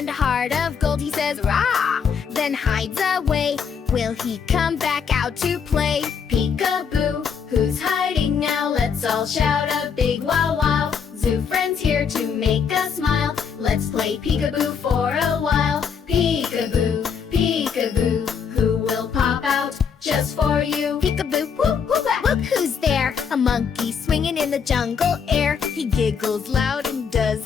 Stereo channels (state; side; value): quieter; right; 6.7 dB